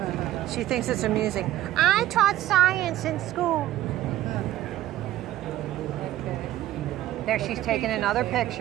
She thinks it's amusing. I taught science in school. There, she's taking another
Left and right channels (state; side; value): quieter; left; 14.1 dB